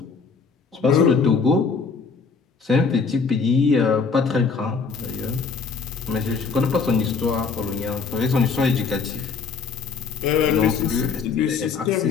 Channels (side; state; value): right; quieter; 5.2 dB